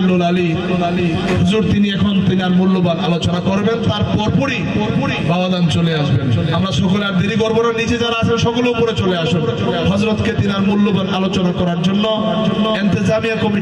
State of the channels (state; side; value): identical; both; correlation 1.00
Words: আলী হুজুর তিনি আর মূল্যবান আলোচনা করবেন। তার পরপরই বাবাজান চলে আসবেন। আমরা সকলে আর দেরি করবো না, নিচে যারা আছেন সকলে উপরে চলে আসুন হযরতকে তিনার মূল্যবান আলোচনা করার জন্য ইন্তেজামিয়া